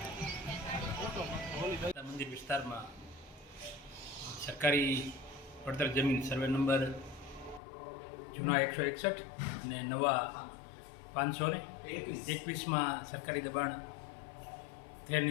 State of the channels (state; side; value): drops out; right; at 7.6 s